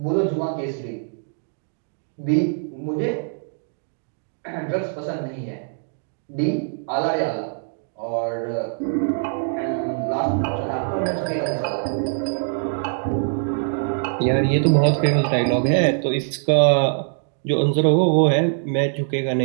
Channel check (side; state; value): left; silent; digital silence